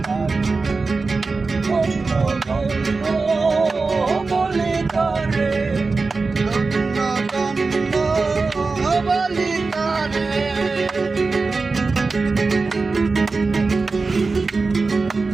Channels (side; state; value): left; quieter; 4.0 dB